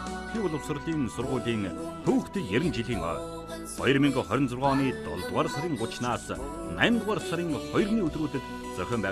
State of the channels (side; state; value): both; identical; correlation 1.00